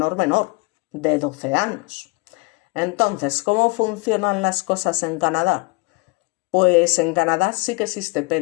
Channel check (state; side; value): quieter; right; 28.1 dB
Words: de 12 años. Entonces, ¿cómo funcionan las cosas en Canadá? Pues en Canadá sí que existe